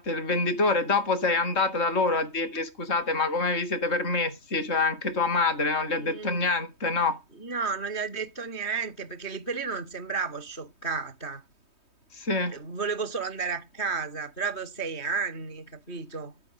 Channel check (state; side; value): late; right; 3.2 ms